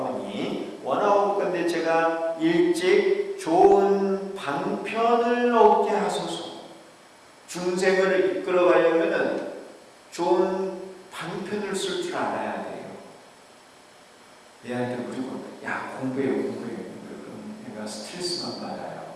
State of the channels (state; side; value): identical; both; correlation 1.00